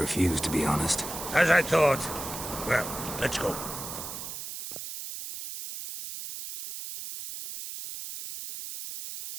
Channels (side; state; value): right; noise; hiss, 8 dB below the sound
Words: to be honest. As I thought. Well, let's go.